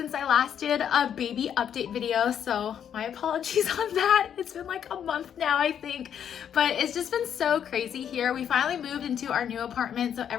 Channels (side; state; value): right; quieter; 8.8 dB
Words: I last did a baby update video, so my apologies on that. It's been like a month now, I think, but it's just been so crazy here. We finally moved into our new apartment, so